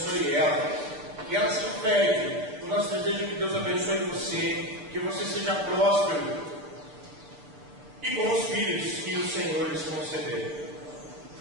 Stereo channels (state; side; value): late; left; 6.9 ms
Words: ela, que ela se perde. O nosso desejo é que Deus abençoe você, que você seja próspero e com os filhos que o Senhor lhes conceder